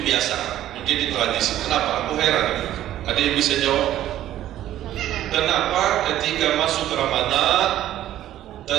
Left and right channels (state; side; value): quieter; left; 12.8 dB